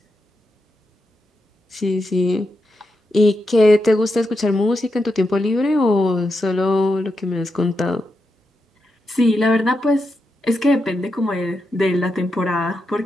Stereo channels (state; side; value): normal; both; correlation 0.86